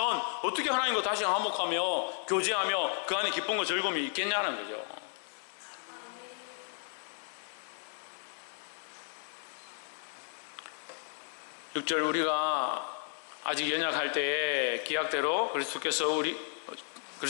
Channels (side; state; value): right; silent; 55 dB below the other